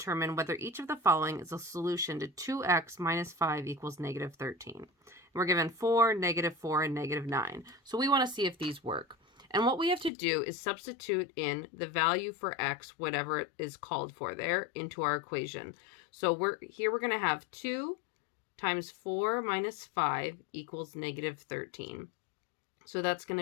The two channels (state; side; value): drops out; right; at 10.1 s